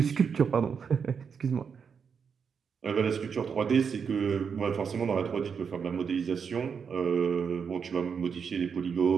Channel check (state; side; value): quieter; left; 6.4 dB